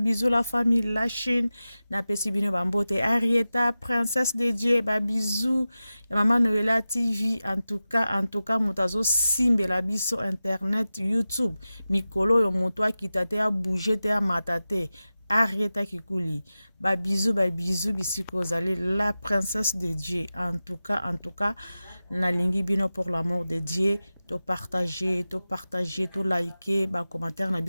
la famille la Chine na pesi bino bambote Arieta princesse de Dieu ba bisous ya Maman Noela TV en tout cas mutazo simbe la biso internet YouTube mikolo yo moto akita te a bouger te a matate Arieta Kikuli ba bisous bisiko zali la princesse de Dieu en tout cas na lingi bino pour l'amour de Dieu to partager to liker ba commentaire na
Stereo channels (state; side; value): inverted; both; correlation -0.94